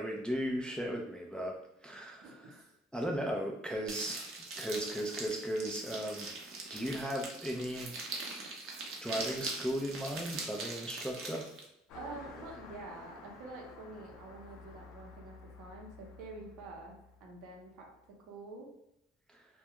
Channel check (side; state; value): both; normal; correlation 0.66